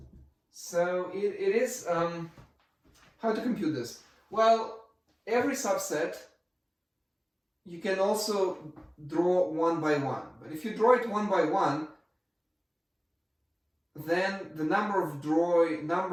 So it is, how to compute this? Well, every subset you can also draw one by one. But if you draw it one by one, then the number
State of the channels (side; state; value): both; identical; correlation 1.00